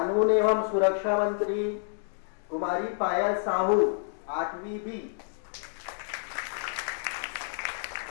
एवं सुरक्षा मंत्री कुमारी पायल साहू 8वीं बी।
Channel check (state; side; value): silent; right; digital silence